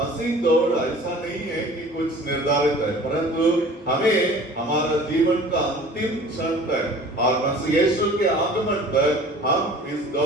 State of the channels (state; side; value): normal; both; correlation 0.45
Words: दौड़ ऐसा नहीं है कि कुछ निर्धारित है, परंतु हमें हमारा जीवन का अंतिम क्षण तक और मसीह यीशु के आगमन तक हम इस